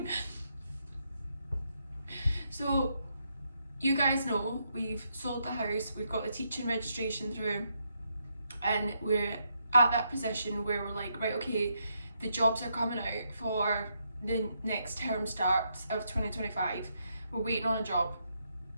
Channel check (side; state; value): both; inverted; correlation -0.79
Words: So, you guys know we've sold the house, we've got the teaching registration through, and we're at that position where we're like, right, okay, the jobs are coming out for the next term start of 2025. We're waiting on a job.